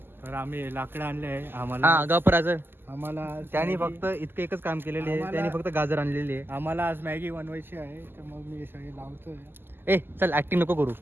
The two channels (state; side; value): late; left; 0.10 ms